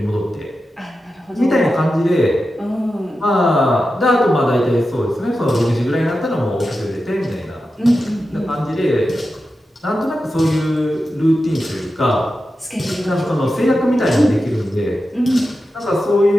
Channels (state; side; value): normal; both; correlation 0.91